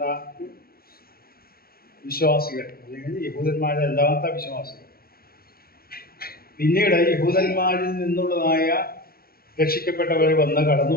വിശ്വാസികൾ, അല്ലെങ്കിൽ യഹൂദന്മാരല്ലാത്ത വിശ്വാസികൾ, പിന്നീട് യഹൂദന്മാരിൽ നിന്നുള്ളതായ രക്ഷിക്കപ്പെട്ടവർ കടന്നു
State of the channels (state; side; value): late; right; 0.44 ms